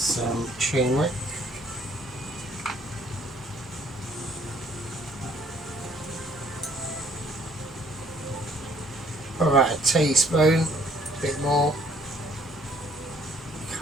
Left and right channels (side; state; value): both; normal; correlation 0.61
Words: turmeric. About a teaspoon, a bit more.